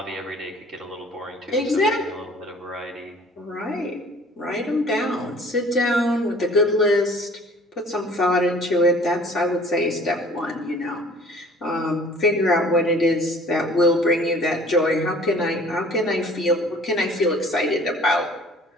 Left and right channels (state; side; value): normal; both; correlation 0.51